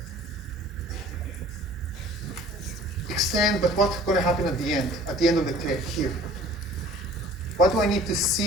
Extend, but what's going to happen at the end of the tail, here? What do I need to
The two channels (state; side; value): normal; both; correlation 0.49